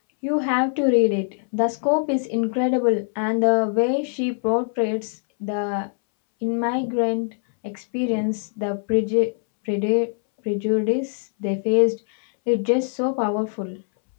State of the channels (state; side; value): silent; right; 64 dB below the other